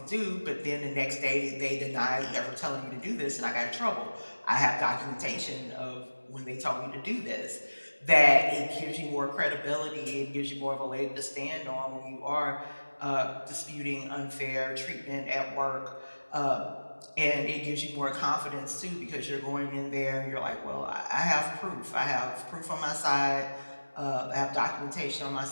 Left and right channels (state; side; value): inverted; both; correlation -1.00